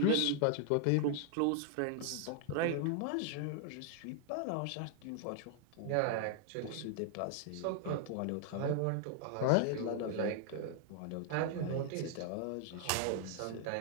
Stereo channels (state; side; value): different; both; correlation 0.00